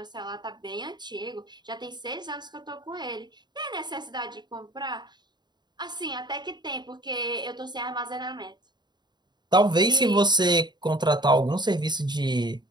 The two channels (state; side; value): late; left; 0.21 ms